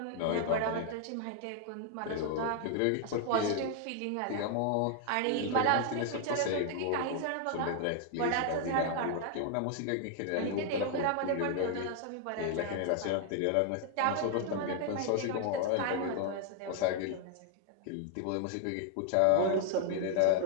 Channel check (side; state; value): both; different; correlation 0.00